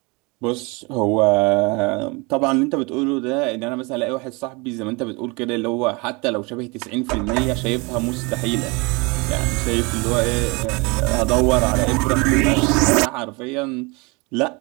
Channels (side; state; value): left; quieter; 27.9 dB